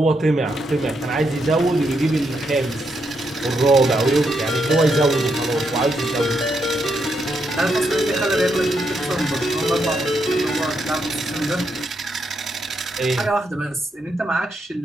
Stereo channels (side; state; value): both; normal; correlation 0.80